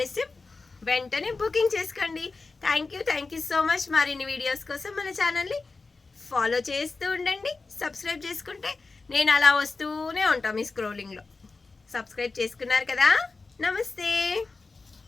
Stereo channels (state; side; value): quieter; right; 3.9 dB